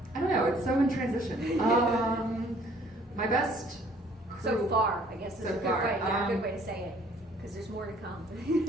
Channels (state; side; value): normal; both; correlation 0.58